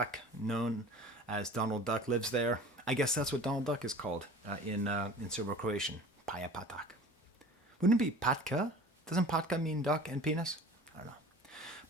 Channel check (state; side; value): normal; both; correlation 0.42